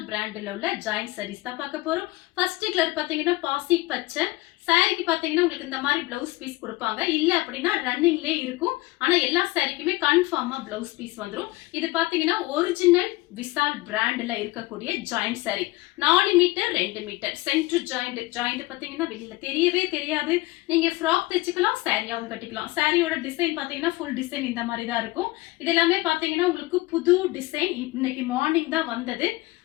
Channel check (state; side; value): quieter; right; 20.3 dB